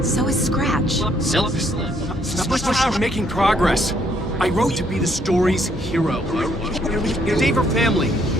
So is Scratch. We're making progress. I wrote to be the story's hero. Save her family.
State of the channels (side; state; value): both; normal; correlation 0.69